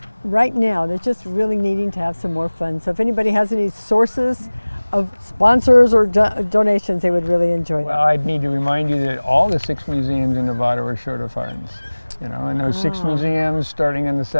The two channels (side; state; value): both; inverted; correlation -1.00